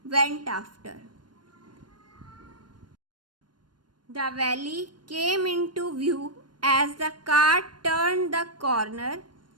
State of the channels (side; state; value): left; late; 0.71 ms